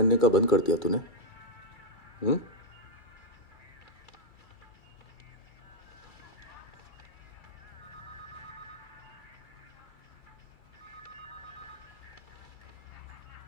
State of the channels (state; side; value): late; right; 2.3 ms